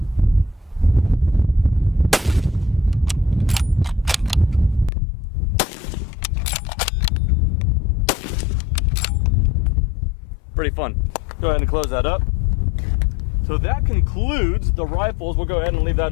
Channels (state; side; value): drops out; right; at 4.9 s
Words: Pretty fun. Go ahead and close that up. So that concludes the rifles. We'll go ahead and leave that